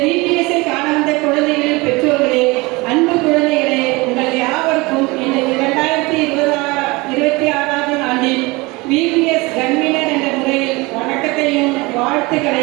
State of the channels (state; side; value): quieter; left; 24.1 dB